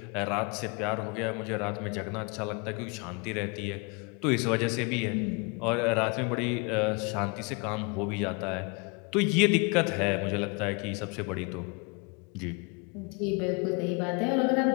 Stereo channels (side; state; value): right; quieter; 31.5 dB